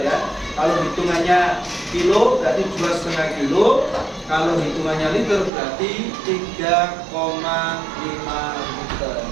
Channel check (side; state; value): left; drops out; at 5.5 s